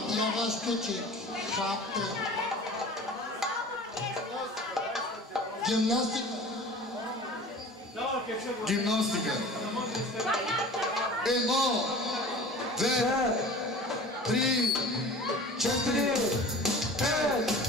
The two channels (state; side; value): normal; both; correlation 0.40